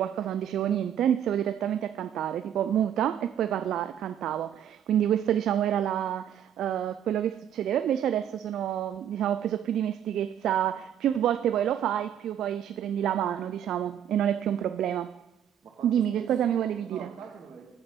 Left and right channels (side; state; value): left; quieter; 9.9 dB